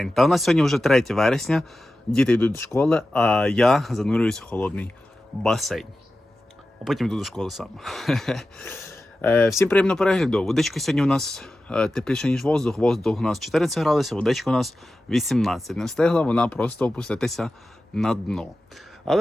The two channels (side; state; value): both; normal; correlation 0.94